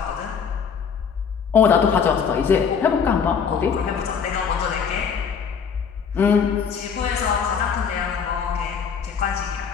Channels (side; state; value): right; quieter; 6.6 dB